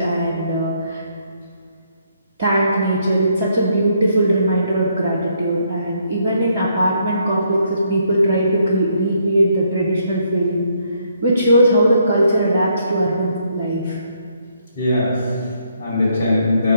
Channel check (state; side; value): inverted; both; correlation -0.72